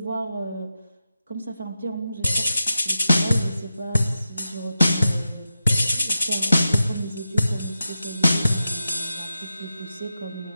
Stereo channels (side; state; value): both; inverted; correlation -0.90